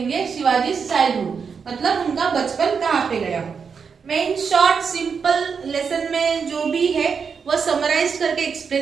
शिवाजी चाइल्डहुड, मतलब उनका बचपन कहाँ पे गया। मैं इन शॉर्ट सिंपल लेसन में जो भी है वो समराइज करके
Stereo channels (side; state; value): left; quieter; 6.0 dB